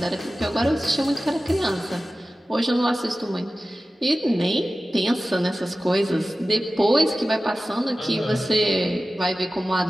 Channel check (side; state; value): both; normal; correlation 0.95